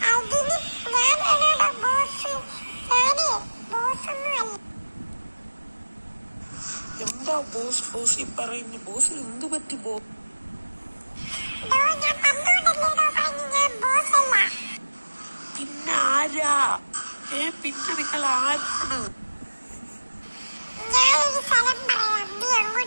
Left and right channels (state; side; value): inverted; both; correlation -1.00